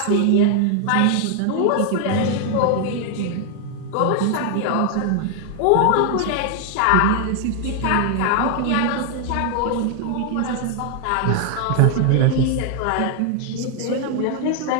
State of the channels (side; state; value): both; different; correlation 0.00